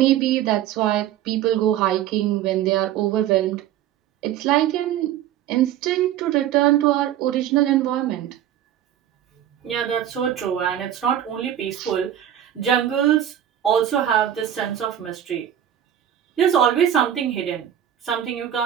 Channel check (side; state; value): left; quieter; 10.9 dB